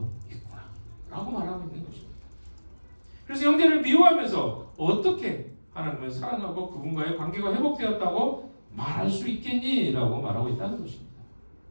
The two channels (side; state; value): both; inverted; correlation -1.00